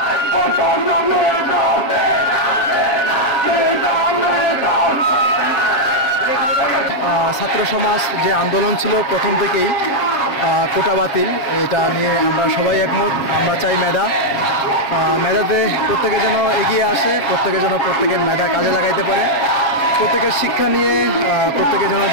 ছাত্র সমাজ যে আন্দোলন ছিল প্রথম থেকেই কোটা বাতিল, এটা নিয়ে আমরা সবাই একমত। আমরা চাই মেধাতে প্রত্যেকে যেন এগিয়ে আসে, প্রত্যেকে যেন প্রত্যেকের মেধা কাজে লাগাইতে পারে, প্রত্যেকের শিক্ষা নিয়ে প্রত্যেকে যেন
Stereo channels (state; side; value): late; right; 7.3 ms